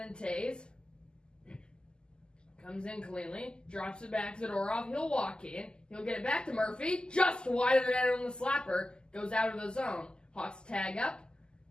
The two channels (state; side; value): late; right; 0.047 ms